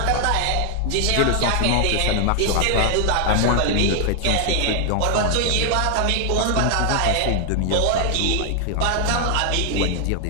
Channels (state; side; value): different; both; correlation 0.00